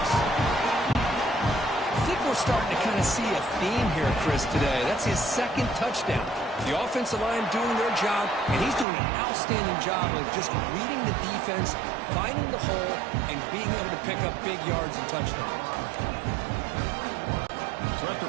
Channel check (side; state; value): left; drops out; at 8.8 s